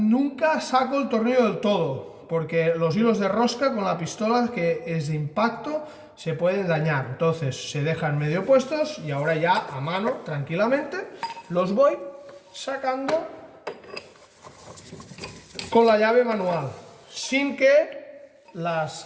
saco el tornillo del todo, porque los hilos de rosca con la pistola que es de impacto se pueden dañar. Entonces se dejan medio puestos y ahora ya a mano, tranquilamente, los voy sacando con la llave manual, sin que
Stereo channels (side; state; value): both; identical; correlation 1.00